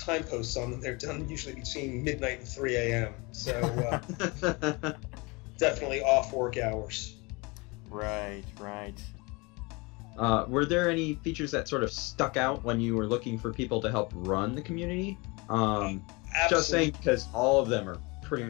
posts on them, they're done usually between midnight and 3 a.m. So definitely off work hours. Right. Were there any features that sort of stuck out when you were looking for people to help run the community? Just saying, because all of them are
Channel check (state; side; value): quieter; right; 26.9 dB